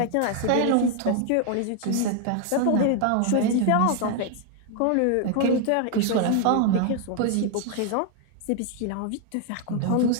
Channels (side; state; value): both; different; correlation 0.00